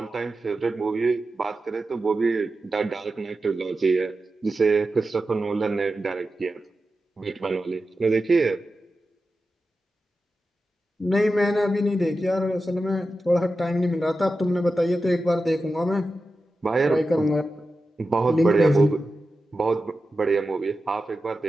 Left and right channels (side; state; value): both; normal; correlation 0.92